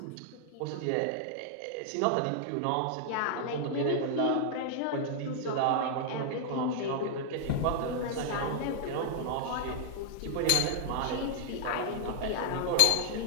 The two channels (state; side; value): different; both; correlation -0.01